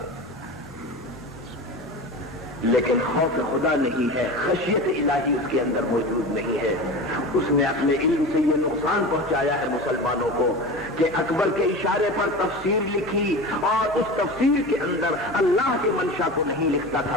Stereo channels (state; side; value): normal; both; correlation 0.30